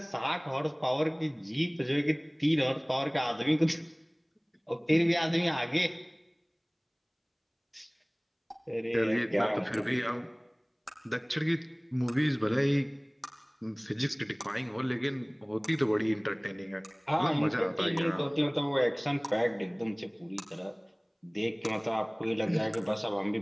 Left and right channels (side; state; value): both; identical; correlation 1.00